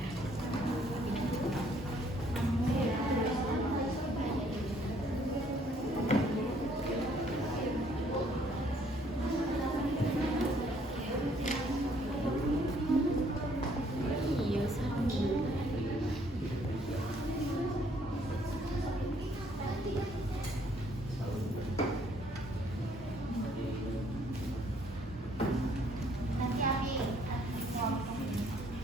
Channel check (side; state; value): both; normal; correlation 0.64